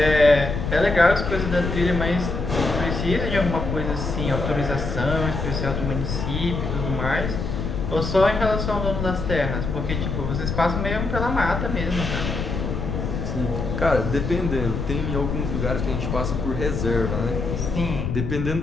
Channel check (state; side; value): noise; left; rumble, 3 dB below the sound